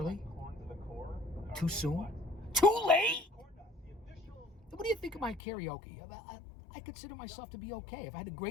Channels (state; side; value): drops out; right; at 5.4 s